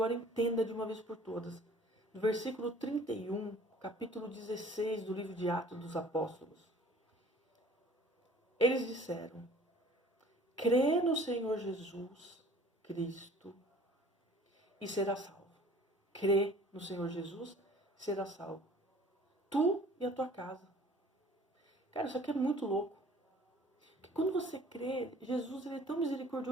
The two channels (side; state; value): both; normal; correlation 0.51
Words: entenda de uma vez por todas. No versículo 31, capítulo 16 do livro de Atos dos Apóstolos. Eles disseram, crê no Senhor Jesus Cristo e será salvo. Crê no Senhor Jesus e será salvo. Tu e a tua casa. Cara, isso aqui é muito louco. Porque quando você crê, Jesus, ele é tão